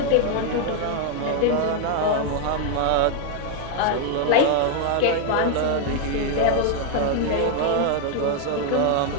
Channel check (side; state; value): both; different; correlation 0.00